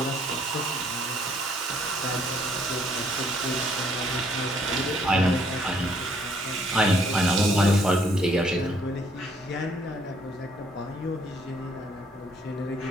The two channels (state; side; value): normal; both; correlation 0.66